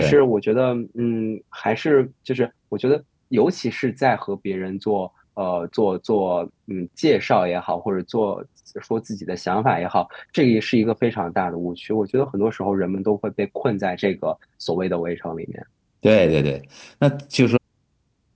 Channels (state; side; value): identical; both; correlation 1.00